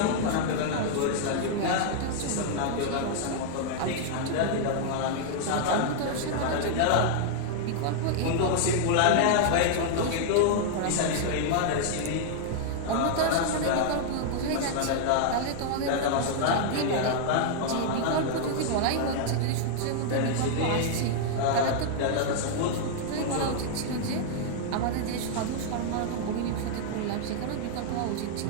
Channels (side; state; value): both; different; correlation -0.01